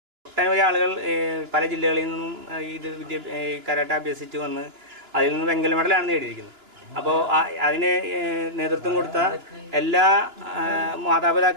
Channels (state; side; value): late; left; 2.9 ms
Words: ഒട്ടനവധി ആളുകൾ പല ജില്ലകളിൽ നിന്നും കരാട്ട അഭ്യസിച്ച് വന്ന് അതിൽ നിന്ന് വെങ്കല മെഡലാണ് നേടിയിരിക്കുന്നത്. അപ്പോൾ അതിന് നേതൃത്വം കൊടുത്ത എല്ലാ